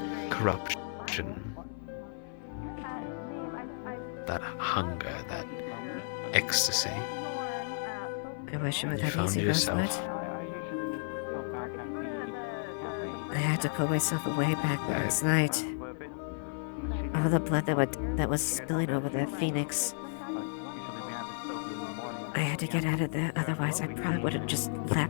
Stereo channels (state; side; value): silent; right; 56 dB below the other